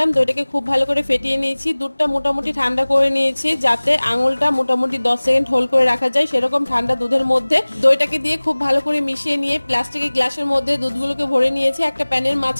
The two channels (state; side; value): inverted; both; correlation -1.00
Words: দইটাকে খুব ভালো করে ফেটিয়ে নিয়েছি। দুধটা মোটামুটি ঠান্ডা করে নিয়েছি যাতে আঙুলটা মোটামুটি 10 সেকেন্ড হোল্ড করে রাখা যায়, সেরকম ঠান্ডা দুধের মধ্যে দইটাকে দিয়ে খুব ভালো করে মিশিয়ে নিয়ে প্লাস্টিকের গ্লাসের মধ্যে দুধগুলোকে ভরে নিয়েছি। একটা প্যানের